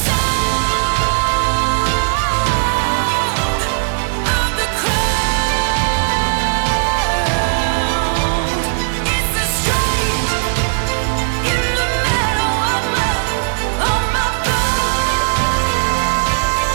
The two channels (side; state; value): left; silent; digital silence